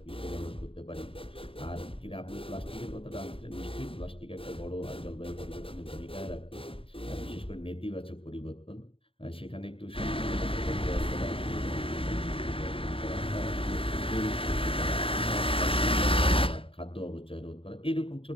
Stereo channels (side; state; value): right; late; 0.26 ms